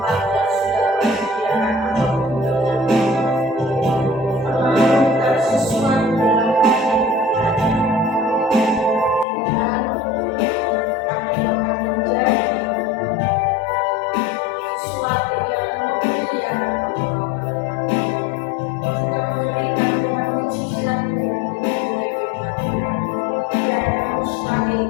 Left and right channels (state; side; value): drops out; right; at 9.2 s